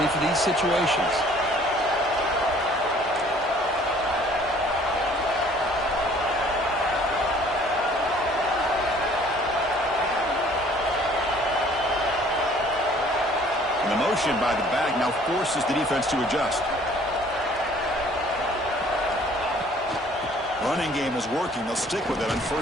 for these situations. By the back now forces the defense to adjust. Running game is working. They'll stick with it on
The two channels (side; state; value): both; normal; correlation 0.55